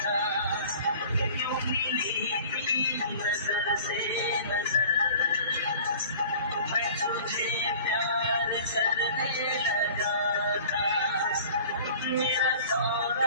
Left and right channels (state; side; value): inverted; both; correlation -0.45